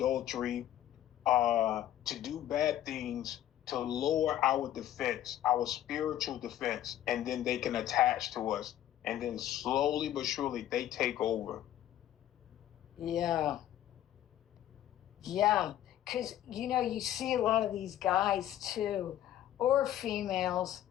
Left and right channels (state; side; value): quieter; right; 12.1 dB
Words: to do bad things, to lower our defense, our spiritual defense, and then they can attach to us. And then slowly but surely they take over. Yeah. Yeah. Because, you see a lot of these guys too, or females,